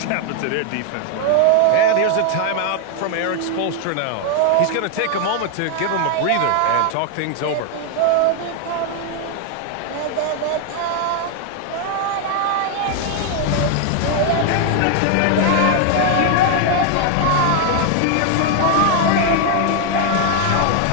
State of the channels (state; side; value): different; both; correlation 0.00